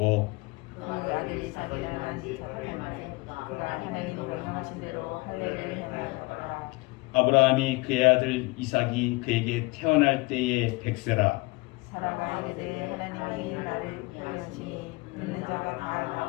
그 아들 이삭이 낳은 지 8년 만에 그가 하나님이 명령하신 대로 할례를 행하였더라. 아브라함이 그의 아들 이삭이 그에게 태어날 때에 백세라. 사라가 이르되 하나님이 나를 위하시니 듣는 자가 다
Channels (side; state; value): right; quieter; 24.7 dB